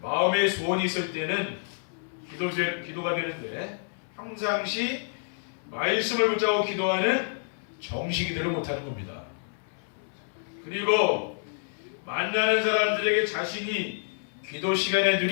마음의 소원이 있을 때는 기도가 되는데 평상시 말씀을 붙잡고 기도하는 정시기도를 못하는 겁니다. 그리고 만나는 사람들에게 자신이 기도 시간에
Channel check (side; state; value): right; silent; 59 dB below the other